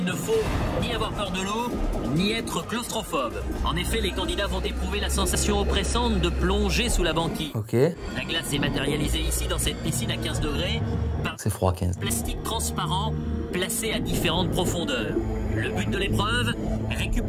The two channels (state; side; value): identical; both; correlation 1.00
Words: ne faut ni avoir peur de l'eau, ni être claustrophobe. En effet, les candidats vont éprouver la sensation oppressante de plonger sous la banquise. Ok. La glace est matérialisée ici dans cette piscine à 15 degrés par C'est froid 15. plastique transparent placé à différentes profondeurs. Le but de l'épreuve,